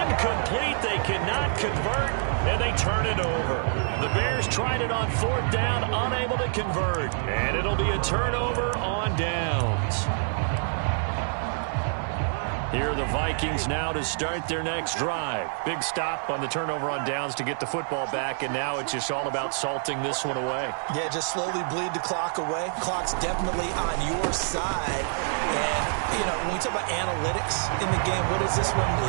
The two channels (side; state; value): left; silent; digital silence